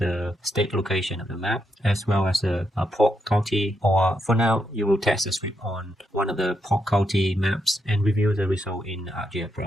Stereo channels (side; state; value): both; normal; correlation 0.81